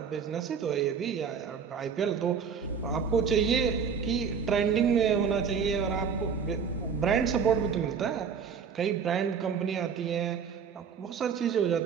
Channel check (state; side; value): quieter; left; 6.5 dB